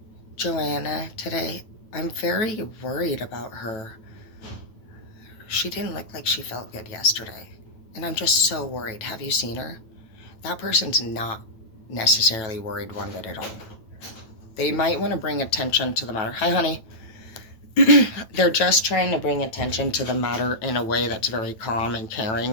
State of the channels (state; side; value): late; right; 9.1 ms